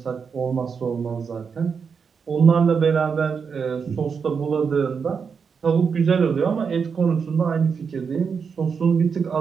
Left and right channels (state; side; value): quieter; left; 6.0 dB